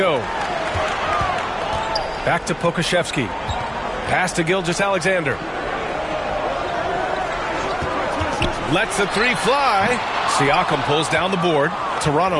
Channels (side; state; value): both; identical; correlation 1.00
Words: Back to Pokusevski. Pass to Gilgeous-Alexander. Lets the 3 fly. Siakam pulls down the board.